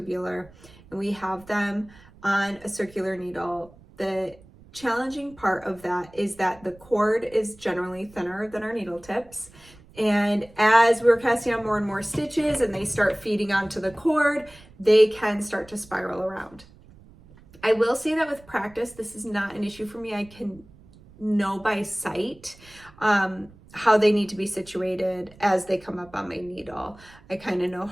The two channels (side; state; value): right; noise; rumble, 24 dB below the sound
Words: and we have them on a circular needle, the challenging part of that is that the cord is generally thinner than our needle tips. And as we're casting on more and more stitches and they start feeding onto the cord, they can start to spiral around. I will say that with practice, this is not an issue for me. I can know by sight how they need to be situated as they come up on my needle. I kind of know